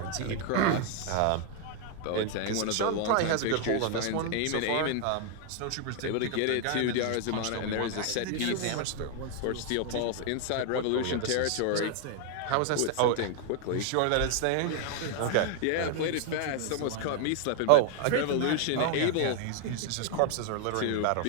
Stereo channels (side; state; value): both; different; correlation 0.00